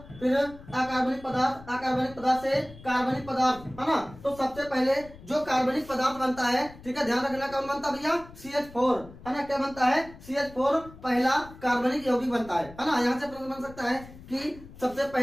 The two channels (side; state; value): left; noise; rumble, 19 dB below the sound